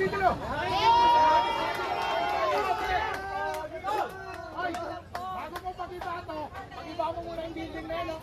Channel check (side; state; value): both; identical; correlation 1.00